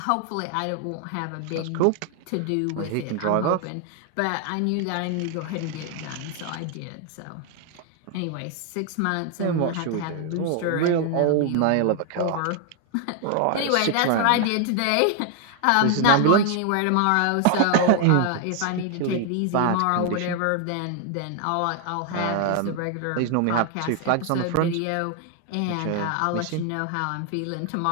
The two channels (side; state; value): both; different; correlation 0.00